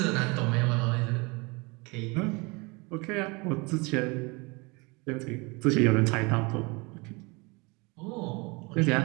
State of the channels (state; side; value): quieter; left; 27.5 dB